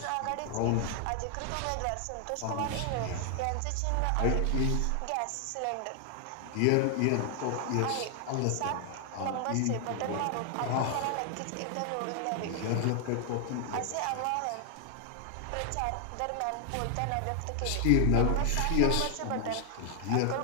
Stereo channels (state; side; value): different; both; correlation 0.00